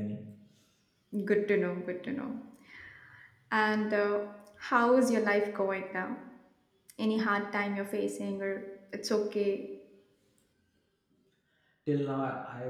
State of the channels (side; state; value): both; identical; correlation 1.00